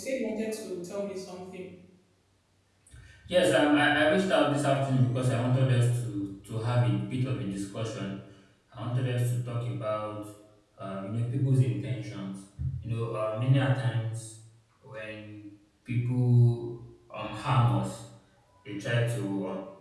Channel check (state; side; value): identical; both; correlation 1.00